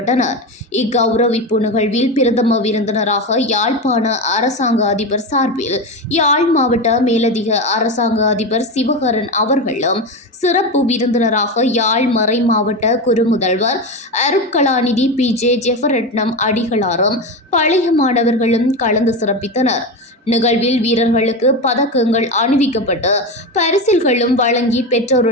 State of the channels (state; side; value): normal; both; correlation 0.18